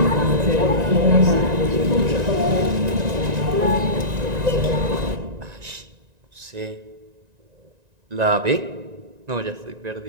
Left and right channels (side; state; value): left; late; 1.9 ms